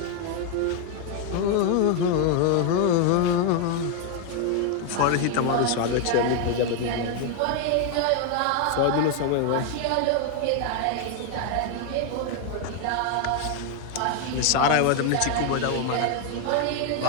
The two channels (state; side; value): different; both; correlation 0.01